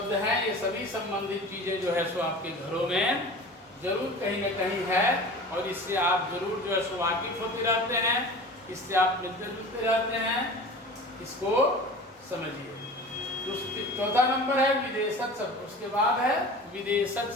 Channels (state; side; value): normal; both; correlation 0.38